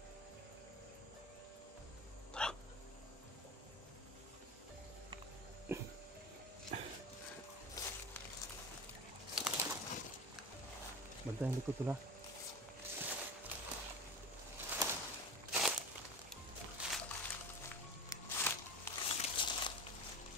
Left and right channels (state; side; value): normal; both; correlation 0.29